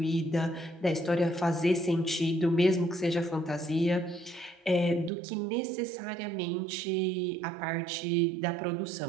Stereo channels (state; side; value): drops out; left; at 5.1 s